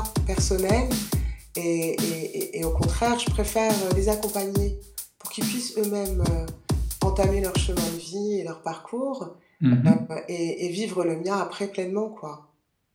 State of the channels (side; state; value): both; identical; correlation 1.00